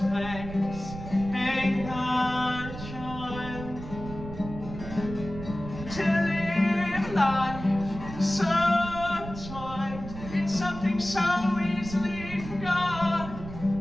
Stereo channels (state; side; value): noise; right; rumble, 11 dB below the sound